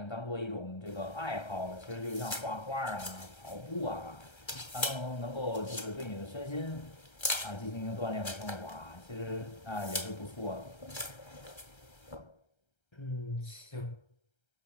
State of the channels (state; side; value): late; right; 1.3 ms